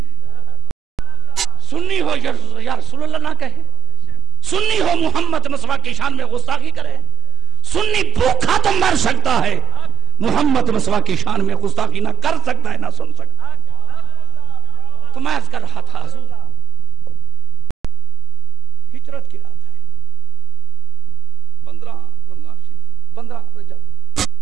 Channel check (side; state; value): left; quieter; 8.5 dB